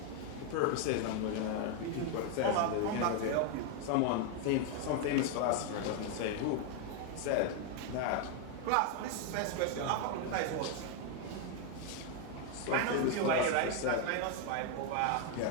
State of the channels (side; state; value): both; different; correlation 0.01